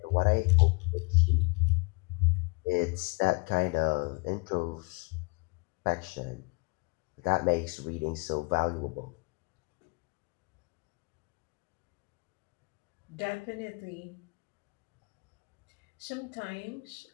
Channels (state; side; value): quieter; right; 29.4 dB